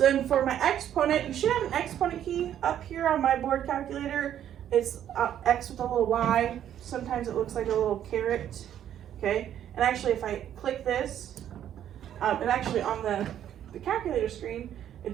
then for my exponent, you should have an exponent key up here on my board calculator. It's X with a little Y. Sometimes it looks like a little caret. Okay. And actually, if I click this, and actually on the calculator screen, it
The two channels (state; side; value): quieter; left; 10.5 dB